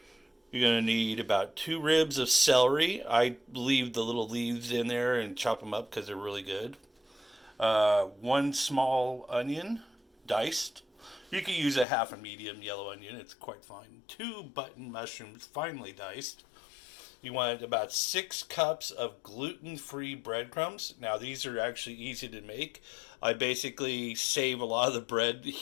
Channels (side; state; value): right; drops out; at 11.9 s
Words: You're going to need about 2 ribs of celery. I leave the little leaves in there and chop them up because they're really good. 1 small onion, diced. You can use a half a medium yellow onion. It's quite fine. 2 button mushrooms, finely diced. You want about 6 cups of gluten-free breadcrumbs. Now, these are actually easy to make. I basically save a lot of the bread